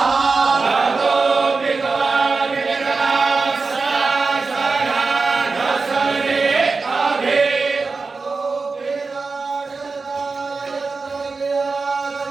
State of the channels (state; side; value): quieter; left; 4.3 dB